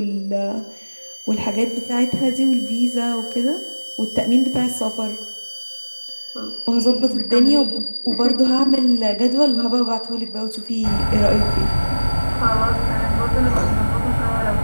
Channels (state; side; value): inverted; both; correlation -1.00